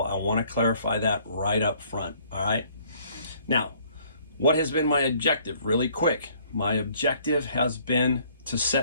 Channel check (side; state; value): both; inverted; correlation -0.60